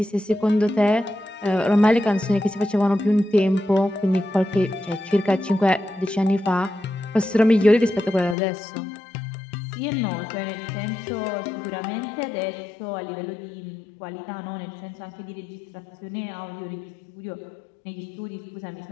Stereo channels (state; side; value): drops out; right; at 8.3 s